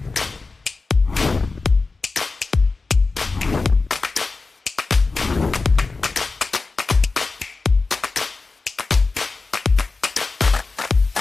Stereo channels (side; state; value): right; quieter; 3.9 dB